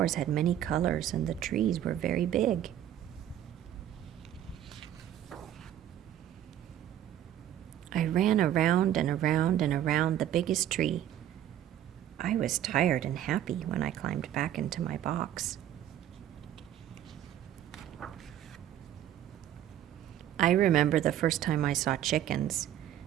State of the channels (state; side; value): quieter; left; 11.4 dB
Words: had many colors, and the trees were very big. I ran around and around and around the biggest tree. I was tired and happy when I climbed back into my box. I remember the first time I saw chickens.